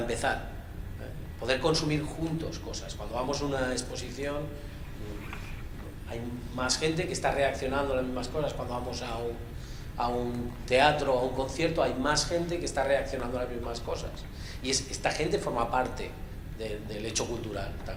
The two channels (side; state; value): both; identical; correlation 1.00